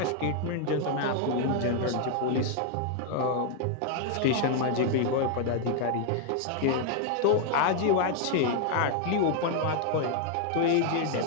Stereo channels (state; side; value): different; both; correlation 0.00